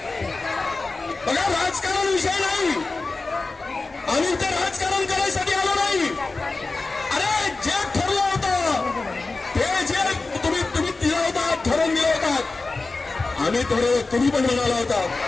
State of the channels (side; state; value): right; quieter; 3.6 dB